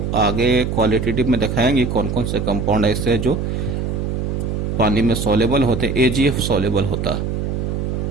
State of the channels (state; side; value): noise; right; hum, 2 dB below the sound